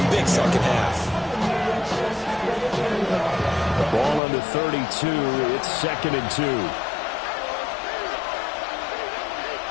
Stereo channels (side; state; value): right; drops out; at 4.2 s